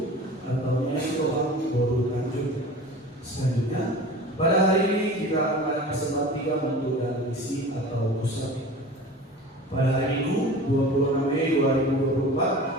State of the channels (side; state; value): both; normal; correlation 0.38